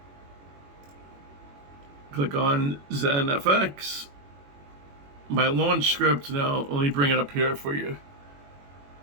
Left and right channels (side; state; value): left; late; 21 ms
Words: Click on ZenFX. My launch script now, let me bring it up here for you.